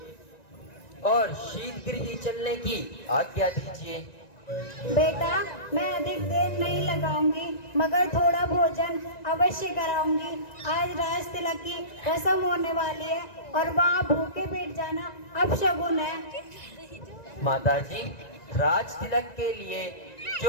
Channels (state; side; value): late; right; 1.9 ms